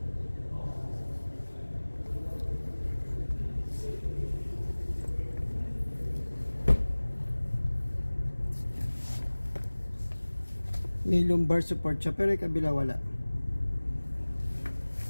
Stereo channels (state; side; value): inverted; both; correlation -1.00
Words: May lumbar support siya, pero yung kabila wala.